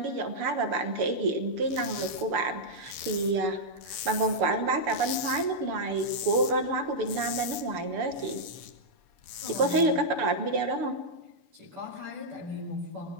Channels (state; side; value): late; left; 6.9 ms